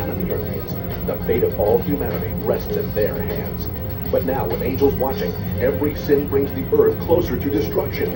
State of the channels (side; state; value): both; identical; correlation 1.00